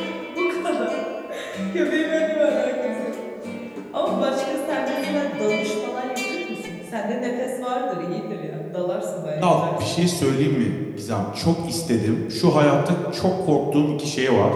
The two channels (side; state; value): both; identical; correlation 1.00